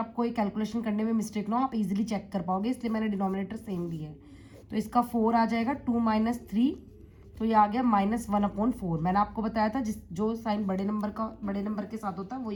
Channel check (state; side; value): identical; both; correlation 1.00